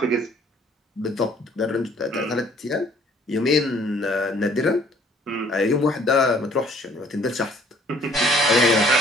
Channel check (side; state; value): both; normal; correlation 0.59